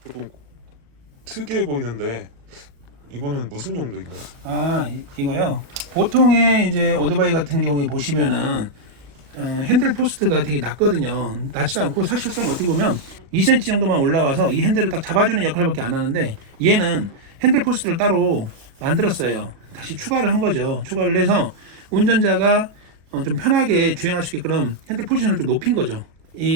조금 특이해 보이는데 이거는 무슨 용도인가요? 이거요. 보통의 이제 오토바이 같은 경우에 보시면은 핸들 포스트가 되게 낮거든요. 낮지도 않고 사실상 어떻게 보면 2cm 정도만 올라와서 이 핸들을 딱 잡아주는 역할밖에 안 하는데, 얘는 핸들 포스트를 따로 만들었어요. 다시 추가를 한 거죠. 추가를 해서 운전자가 좀 편하게 주행할 수 있게끔 핸들 포지션을 좀 높인 거죠.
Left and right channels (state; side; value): late; left; 37 ms